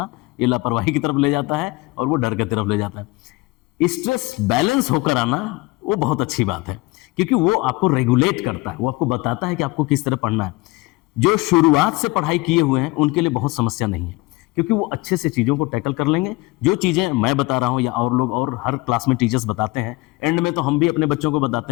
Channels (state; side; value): quieter; right; 22.8 dB